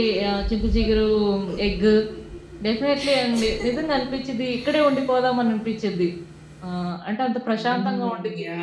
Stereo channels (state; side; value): identical; both; correlation 1.00